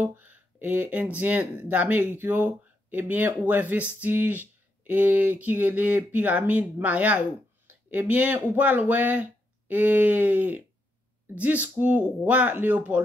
et indien d'Amérique, eh bien, où est vestige et qui est les pyramides maya. Eh bien, ou pas ouais et discours roi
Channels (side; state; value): both; normal; correlation 0.81